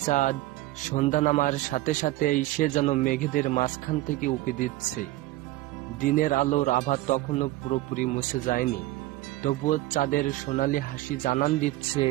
চাঁদ, সন্ধ্যা নামার সাথে সাথেই সে যেন মেঘেদের মাঝখান থেকে উঁকি দিচ্ছে। দিনের আলোর আভা তখনও পুরোপুরি মুছে যায়নি, তবুও চাঁদের সোনালি হাসি জানান দিচ্ছে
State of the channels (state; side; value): quieter; left; 17.1 dB